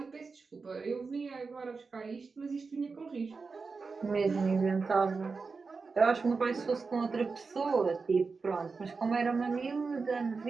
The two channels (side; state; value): left; quieter; 4.6 dB